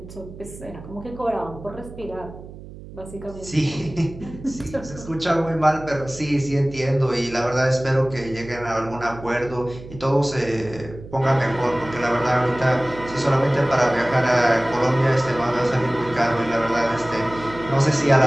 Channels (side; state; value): right; noise; hum, 15 dB below the sound